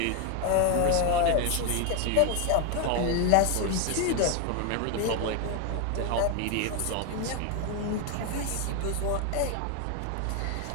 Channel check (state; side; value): different; both; correlation 0.01